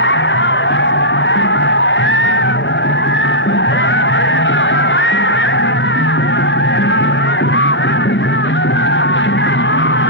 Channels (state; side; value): normal; both; correlation -0.11